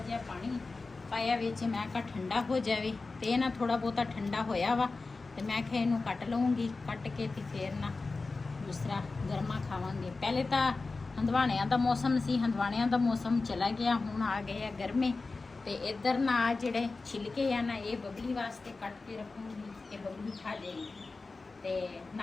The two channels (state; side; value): quieter; right; 3.8 dB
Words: ਪਾਣੀ ਪਾਇਆ ਵਿੱਚ ਮੈਂ ਕਿਹਾ ਠੰਡਾ ਹੋ ਜਾਵੇ ਤੇ ਇਹ ਨਾ ਥੋੜਾ ਬਹੁਤਾ ਠੰਡਾ ਹੋਇਆ ਵਾ ਤੇ ਮੈਂ ਕਿਹਾ ਇਹਨੂੰ ਕੱਟ ਲਵਾਂਗੀ ਕੱਟ ਕੇ ਤੇ ਫੇਰ ਨਾ ਦੂਸਰਾ ਗਰਮਾ ਖਾਵਾਂਗੇ ਪਹਿਲੇ ਤਾਂ ਹੰਦਵਾਣਿਆਂ ਦਾ ਮੌਸਮ ਸੀ ਹੰਦਵਾਣਿਆਂ ਦਾ ਮੌਸਮ ਚਲਾ ਗਿਆ ਹੁਣ ਆ ਗਏ ਆ ਗਰਮੇ ਤੇ ਇੱਧਰ ਨਾ ਜਿਹੜੇ ਛਿਲਕੇ ਆ ਨਾ ਇਹ ਬਬਲੀ ਵਾਸਤੇ ਕੱਟ ਕੇ ਰੱਖੂੰਗੀ ਕਿ ਬਬਲੀ ਖਾ ਜਾਏਗੀ ਤੇ